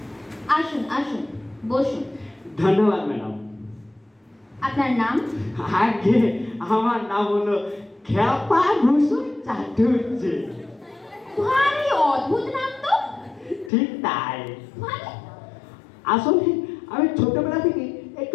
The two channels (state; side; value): drops out; right; at 13.7 s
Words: আসুন আসুন, বসুন। ধন্যবাদ ম্যাডাম। আপনার নাম? আগে আমার নাম হলো খেপা ভূষণ চাটুর্যে। ভারী অদ্ভুত নাম তো। ঠিক তাই। মানে? আসলে আমি ছোটবেলা থেকে